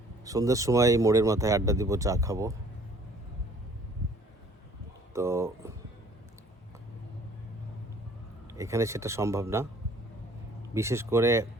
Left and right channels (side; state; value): both; normal; correlation 0.56